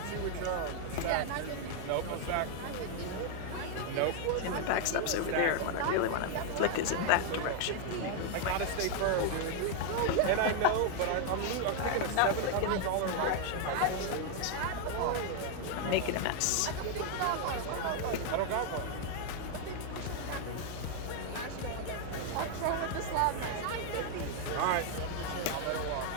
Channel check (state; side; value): different; both; correlation 0.00